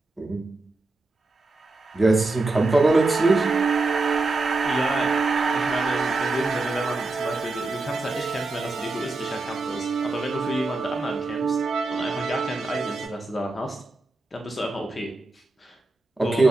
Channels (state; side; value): quieter; left; 3.2 dB